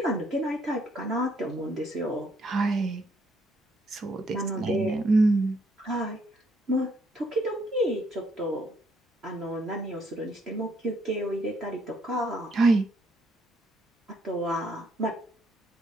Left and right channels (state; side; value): normal; both; correlation 0.70